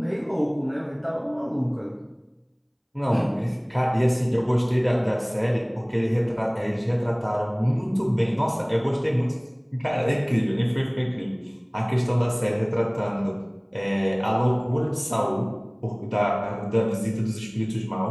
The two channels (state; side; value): identical; both; correlation 1.00